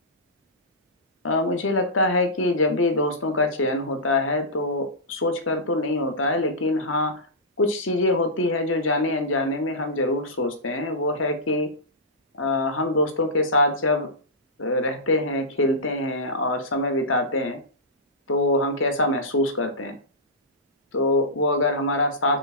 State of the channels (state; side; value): normal; both; correlation -0.16